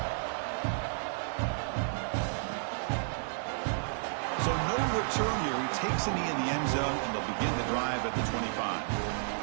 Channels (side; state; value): left; silent; 56 dB below the other